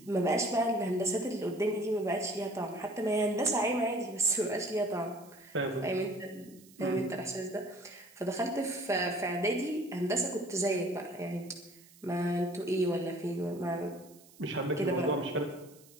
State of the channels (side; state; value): right; noise; hiss, 24 dB below the sound